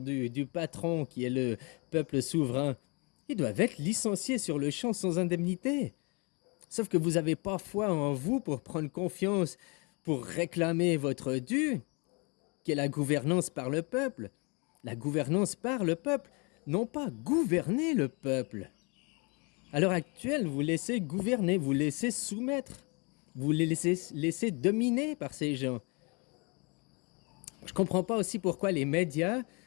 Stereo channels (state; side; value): quieter; right; 31.2 dB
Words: patron qui est le peuple souverain, ils doivent être licenciés sur le champ sans indemnité. Sauf que vous n'avez pas foi en vous pour prendre confiance, pour réclamer votre dû, qui est la gouvernance par le peuple. La gouvernance par le peuple, non pas gouverner le peuple. À l'heure actuelle, vous laissez gouverner, vous laissez soumettre, vous les laissez dominer par ces gens. Je ne comprends pas aussi pourquoi les médias,